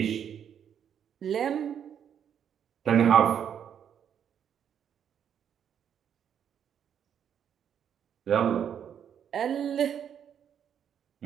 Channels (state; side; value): quieter; left; 8.6 dB